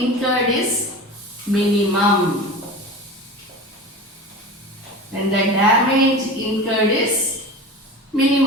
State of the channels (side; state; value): both; normal; correlation 0.32